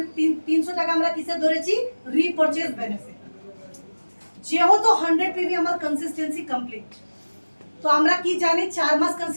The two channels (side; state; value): both; inverted; correlation -1.00